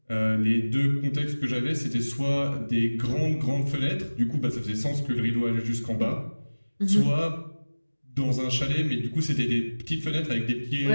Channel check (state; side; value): inverted; both; correlation -1.00